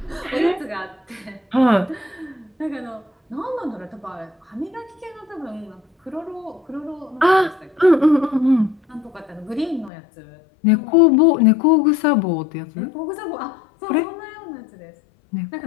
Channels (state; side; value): drops out; right; at 9.9 s